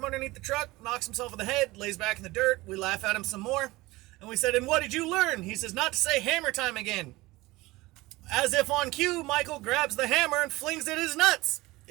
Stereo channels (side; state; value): left; quieter; 20.3 dB